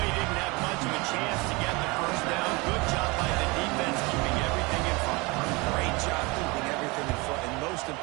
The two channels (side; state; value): left; quieter; 25.9 dB